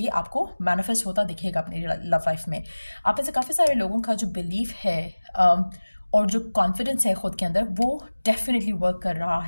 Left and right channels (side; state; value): both; inverted; correlation -1.00